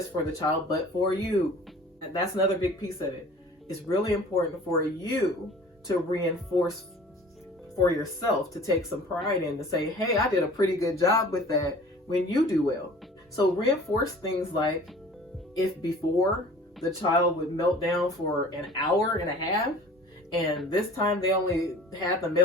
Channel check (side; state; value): both; normal; correlation 0.46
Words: for the child, but for you. And that's another big piece of it. It's really important for you to reinforce for yourself, to take some pride in, to say, hey, I did a pretty good job with that when you do well. So reinforce things like, if before the child would melt down for an hour and a half, and this time they only had the